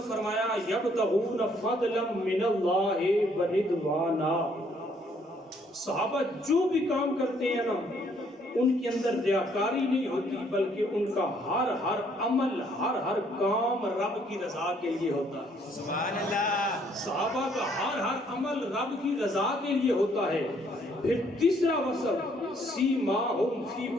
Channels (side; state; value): both; normal; correlation 0.66